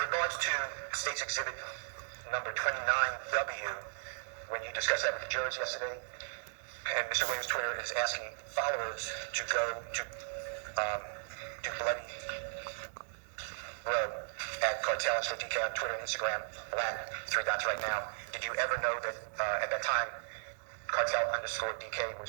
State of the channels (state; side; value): silent; left; digital silence